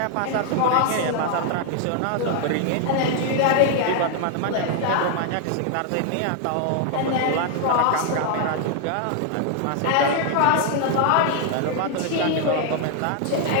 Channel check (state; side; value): different; both; correlation 0.00